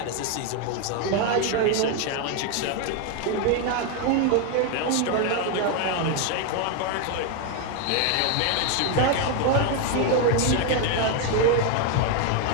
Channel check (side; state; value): both; different; correlation 0.01